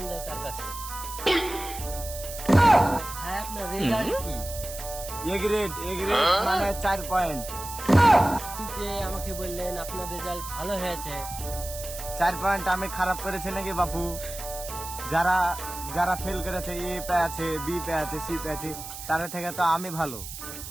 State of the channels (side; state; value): right; noise; hiss, 10 dB below the sound